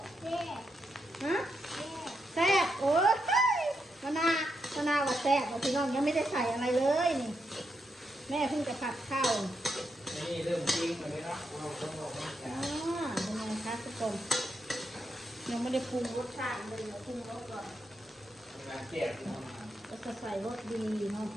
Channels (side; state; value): both; normal; correlation 0.83